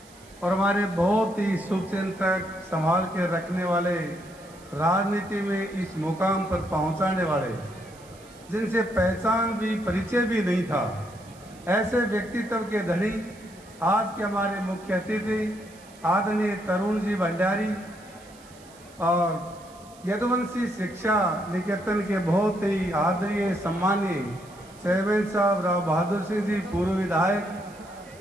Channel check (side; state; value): right; noise; hiss, 24 dB below the sound